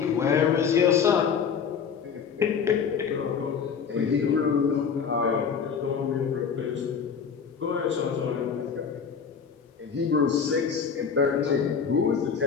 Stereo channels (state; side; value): quieter; right; 6.5 dB